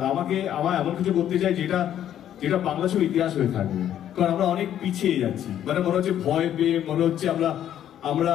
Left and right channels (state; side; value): quieter; right; 10.8 dB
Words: আমার এমন কিছু করতে চাই যেটা বাংলা ছবির ইতিহাস হয়ে থাকবে। কারণ আমরা অনেক পিছিয়ে যাচ্ছি, মানে মনে হচ্ছে ভয় পেয়ে, মনে হচ্ছে আমরা